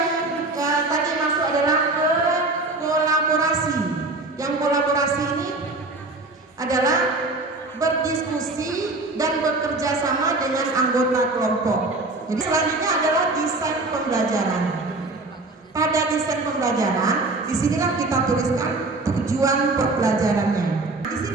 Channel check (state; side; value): quieter; left; 3.1 dB